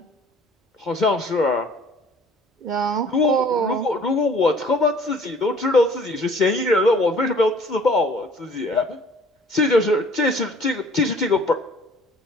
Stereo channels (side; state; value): both; normal; correlation 0.53